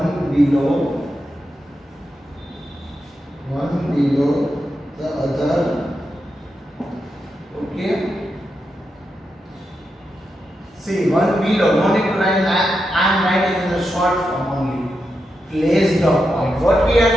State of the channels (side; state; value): both; normal; correlation 0.87